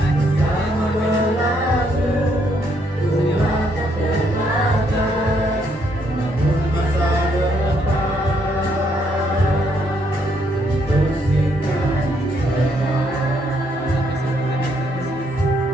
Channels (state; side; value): normal; both; correlation 0.72